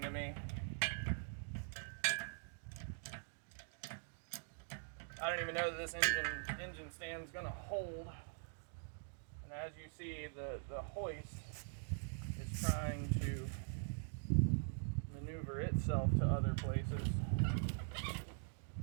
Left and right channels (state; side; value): silent; left; digital silence